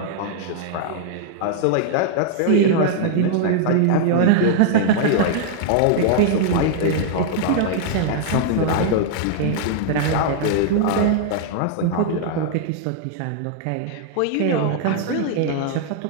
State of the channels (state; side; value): different; both; correlation -0.01